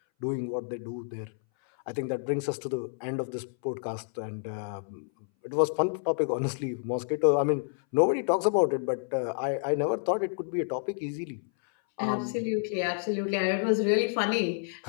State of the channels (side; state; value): right; silent; 58 dB below the other